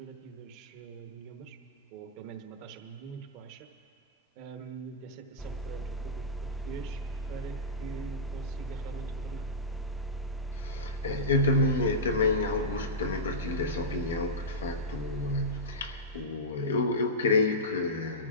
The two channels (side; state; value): both; normal; correlation -0.14